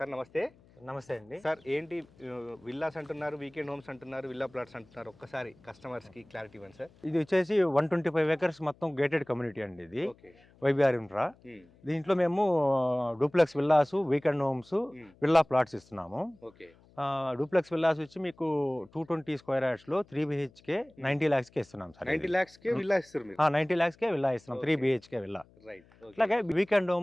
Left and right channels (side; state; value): left; noise; hum, 28 dB below the sound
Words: నమస్తే. నమస్తే అండి. సార్ ఏంటి విల్లాస్ అంటున్నారు, వీకెండ్ హోమ్స్ అంటున్నారు, విల్లా ప్లాట్స్ అంటున్నారు, ఒక్కసారి కస్టమర్స్కి క్లారిటీ ఇవ్వండి సార్. ఇది వచ్చేసి 125 acres మొత్తం గేటెడ్ కమ్యూనిటీ అండి. ఇది ఓకే. YBR infra. దీంట్లో మేము duplex villas, weekend homes, villa plots ఇస్తున్నాము. ఓకే. డూప్లెక్స్ విల్లాస్ వచ్చి మీకు 220 square yards లో 3 BHK 90 lakhs కే ఇస్తున్నాం సార్. 90 lakhs కే విల్లా ఇస్తారు మీరు? 90 lakhs కే విల్లా ఇస్తున్నాం, 3 BHK విల్లా. రైట్. అలాగే వీకెండ్